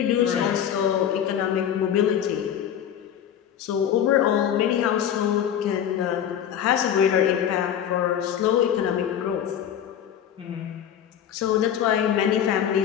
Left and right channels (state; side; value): quieter; right; 9.6 dB